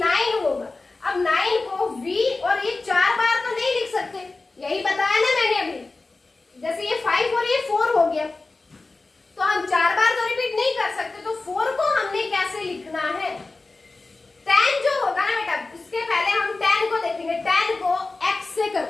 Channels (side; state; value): right; quieter; 3.5 dB